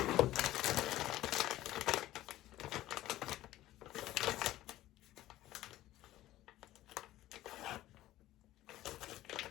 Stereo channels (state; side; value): quieter; right; 15.2 dB